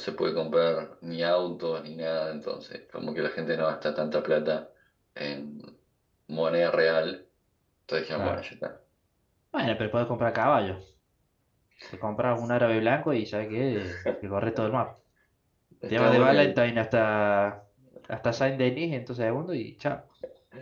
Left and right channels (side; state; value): both; identical; correlation 1.00